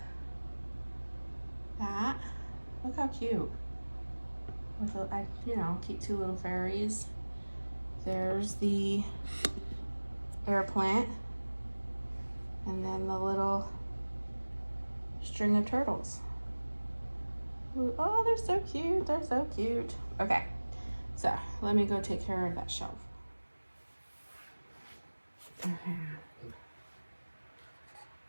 that. Look how cute. With keep two little fairies. There's the air plant, and then the little string of turtles. Ooh, oh, they're so cute. They're so cute. Okay, so let me go take care of that shelf. Okay.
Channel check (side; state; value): both; inverted; correlation -1.00